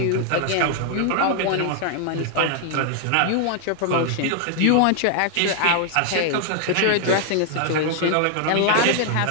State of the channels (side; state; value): both; different; correlation 0.00